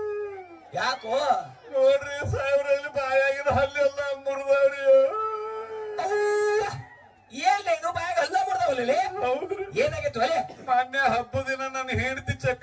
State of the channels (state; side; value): identical; both; correlation 1.00